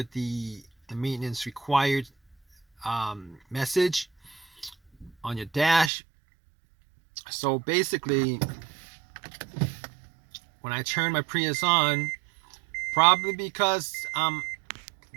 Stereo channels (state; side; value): drops out; left; at 5.9 s